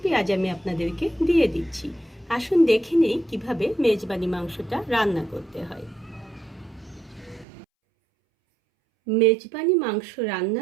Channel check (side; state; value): left; drops out; at 7.5 s